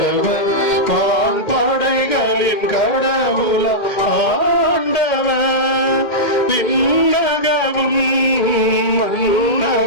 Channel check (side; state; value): right; late; 2.1 ms